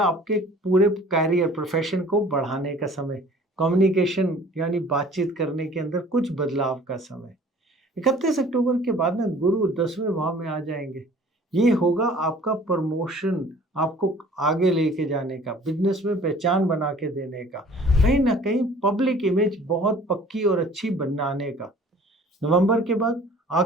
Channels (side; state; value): both; normal; correlation 0.50